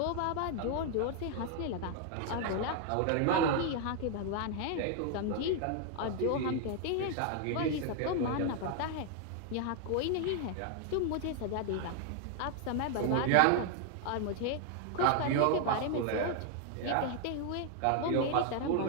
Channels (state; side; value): different; both; correlation 0.00